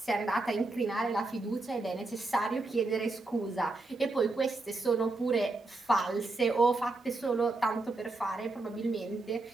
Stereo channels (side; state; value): left; quieter; 3.2 dB